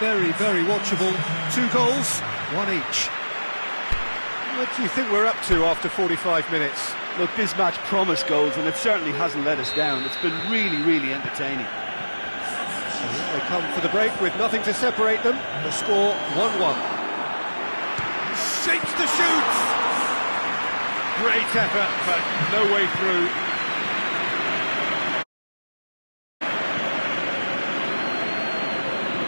very watchable. 2 goals, 1 each. What do you think we're up to after 45 minutes? Look, this match promised goals, and it certainly hasn't let us down. It's been really, really entertaining. So here they come for the break with nothing to separate them. The score 1-1. Shapes to shoot! Great effort, but no way through.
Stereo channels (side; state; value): both; inverted; correlation -1.00